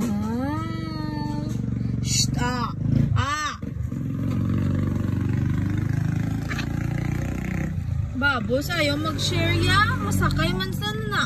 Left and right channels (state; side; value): identical; both; correlation 1.00